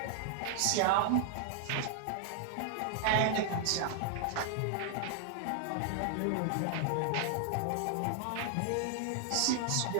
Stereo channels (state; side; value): different; both; correlation 0.00